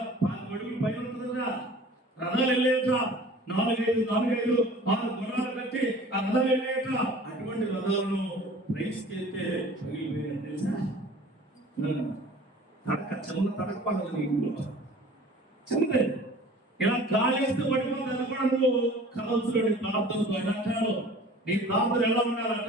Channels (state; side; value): normal; both; correlation 0.45